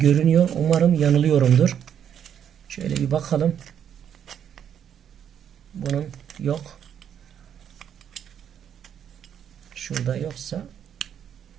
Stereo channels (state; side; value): quieter; left; 8.9 dB